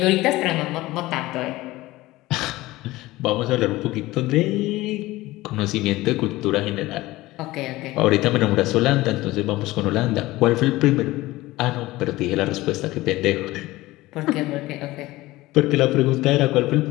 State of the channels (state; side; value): quieter; right; 18.5 dB